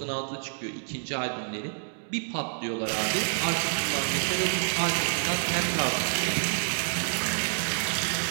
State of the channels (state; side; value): silent; left; digital silence